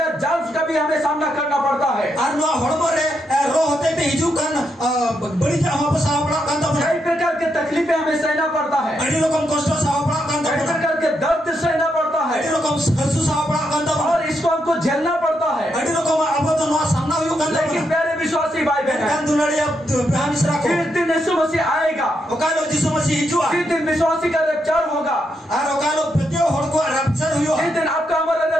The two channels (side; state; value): both; normal; correlation 0.81